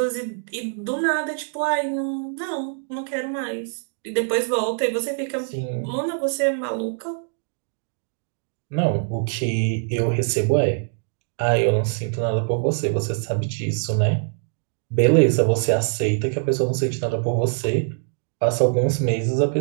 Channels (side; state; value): left; silent; digital silence